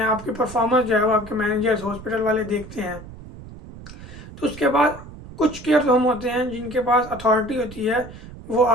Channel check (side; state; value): right; noise; rumble, 15 dB below the sound